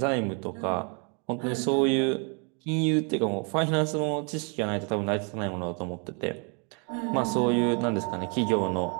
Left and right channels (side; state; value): left; quieter; 36.0 dB